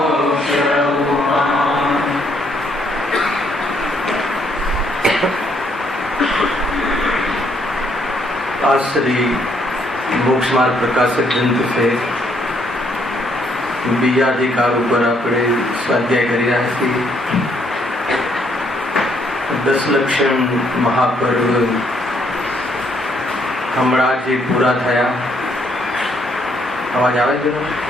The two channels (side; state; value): both; normal; correlation 0.70